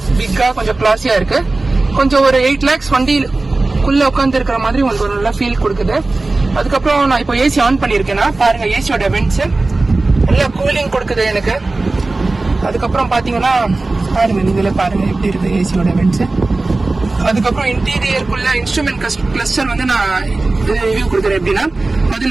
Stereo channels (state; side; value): quieter; left; 3.3 dB